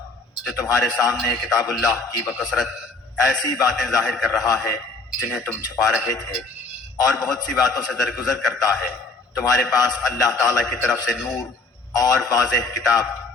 جو تمہارے سامنے کتاب اللہ کی بکثرت ایسی باتیں ظاہر کر رہا ہے جنہیں تم چھپا رہے تھے، اور بہت سی باتوں سے درگزر کرتا ہے. تمہارے پاس اللہ تعالیٰ کی طرف سے نور اور واضح کتاب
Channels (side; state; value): right; quieter; 3.7 dB